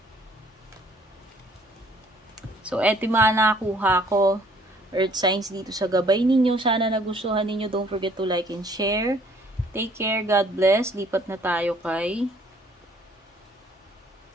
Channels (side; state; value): both; normal; correlation 0.60